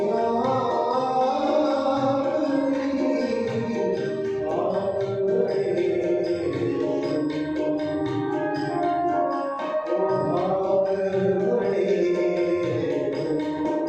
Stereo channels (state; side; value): identical; both; correlation 1.00